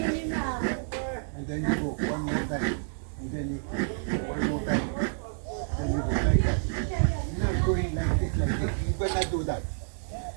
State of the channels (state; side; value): silent; left; digital silence